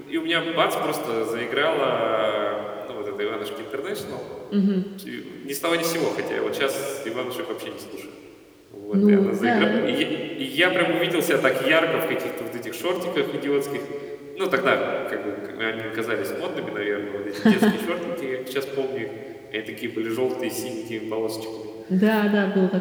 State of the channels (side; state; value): both; identical; correlation 1.00